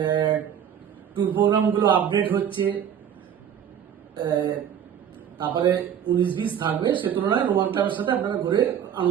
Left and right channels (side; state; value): left; quieter; 8.9 dB